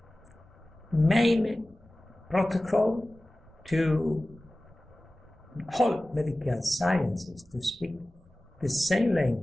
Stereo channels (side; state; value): both; normal; correlation 0.97